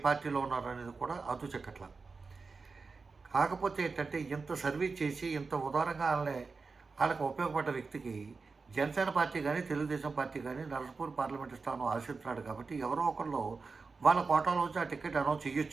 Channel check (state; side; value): quieter; left; 4.4 dB